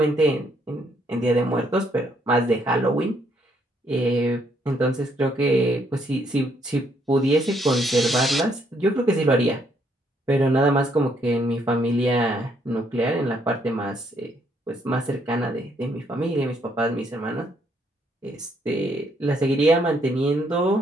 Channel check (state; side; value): normal; both; correlation 0.71